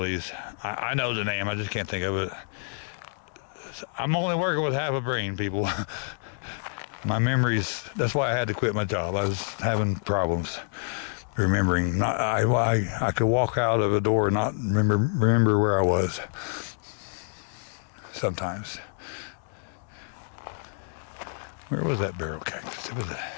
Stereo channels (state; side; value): silent; right; digital silence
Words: these. I know the name, I just can't think of it. I'm only working with half a brain, people. My memories, that's why I had to quit my job. I was having problems remembering. I could walk out of a door and not remember where I was sometimes. Where was that barrel cactus? It was